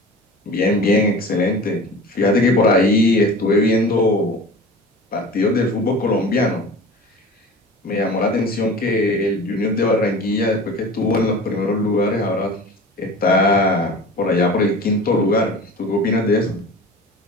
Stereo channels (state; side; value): normal; both; correlation 0.38